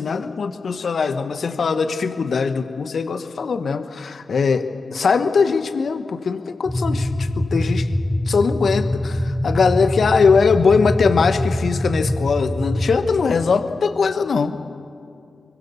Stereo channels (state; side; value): quieter; right; 4.0 dB